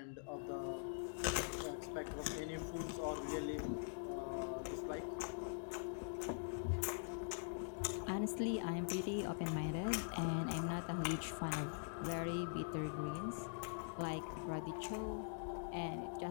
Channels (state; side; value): silent; right; digital silence